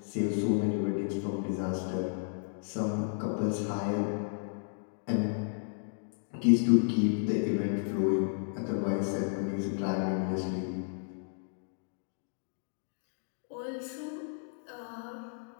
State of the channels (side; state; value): right; silent; digital silence